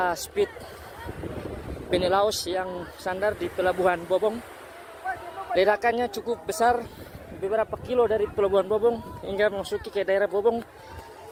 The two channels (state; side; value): identical; both; correlation 1.00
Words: speed penny Laos yang sandar di Pelabuhan Bobong. Ledakannya cukup besar, beberapa kilo dari Pelabuhan Bobong hingga memasuki ke daerah Bobong